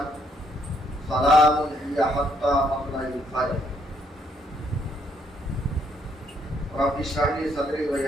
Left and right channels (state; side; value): normal; both; correlation 0.71